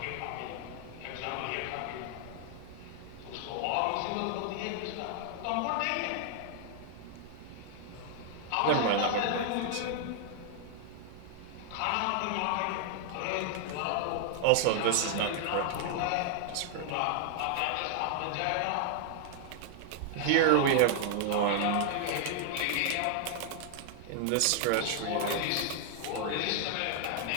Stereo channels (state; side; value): different; both; correlation 0.00